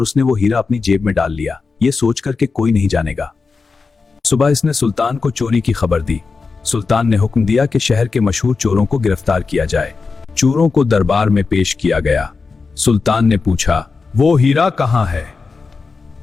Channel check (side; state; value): right; quieter; 4.5 dB